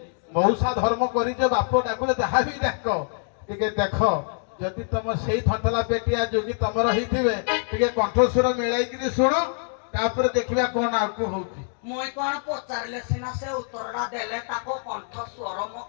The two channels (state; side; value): silent; right; 56 dB below the other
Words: ମଉସା ଧର୍ମ କରିଛ ବାପ ଡାକୁଲେ ଯାହା ବି ଡାକ ଟିକେ ଦେଖ ଯଦି ତମ ସେଇ ଥନ୍ତଲା ପେଟିଆ ଯୋଗୀ ତମର ହେଇଥିବେ ଟିକେ କଣ୍ଠସ୍ୱର ମିଳାଇକିରି ଶୁଣ ତାପରେ ଦେଖିବା କଣ ଆଗକୁ ହଉଛି ମୁଇଁ କଣ ପଚାରିଲେ ସିନା ସେ ଉତ୍ତରଟା ଦେଲେ ତାକୁ କଣ୍ଠ ସ୍ୱର ମୋ